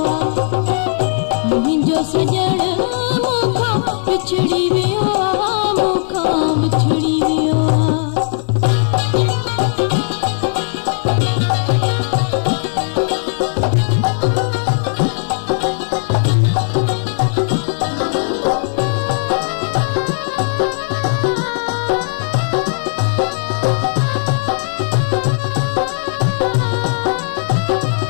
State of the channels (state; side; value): silent; right; 68 dB below the other